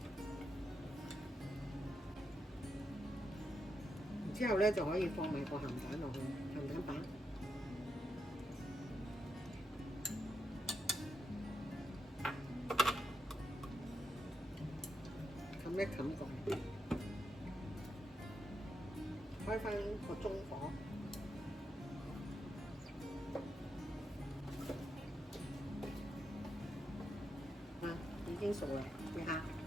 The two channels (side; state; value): both; normal; correlation 0.83